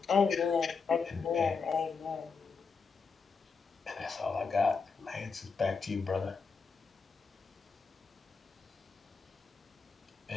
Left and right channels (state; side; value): quieter; right; 5.0 dB